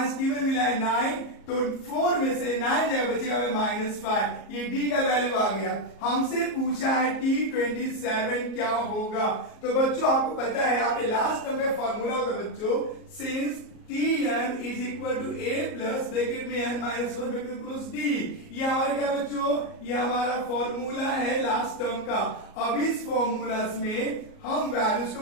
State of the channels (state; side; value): late; right; 37 ms